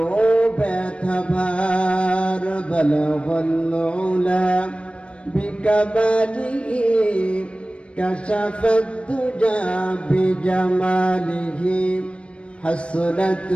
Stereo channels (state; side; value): late; right; 0.060 ms